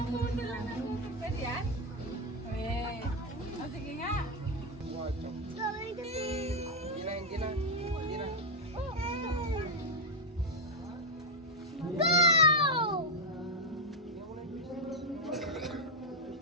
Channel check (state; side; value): normal; both; correlation 0.02